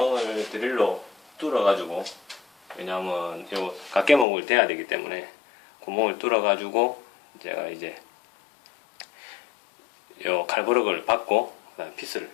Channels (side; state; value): right; drops out; at 4.2 s